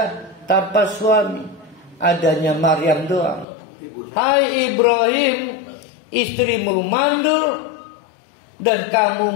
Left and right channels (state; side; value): drops out; right; at 3.5 s